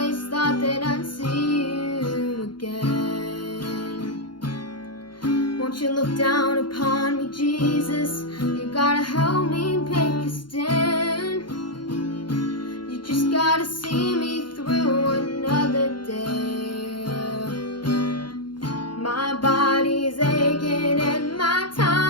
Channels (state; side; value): late; right; 0.71 ms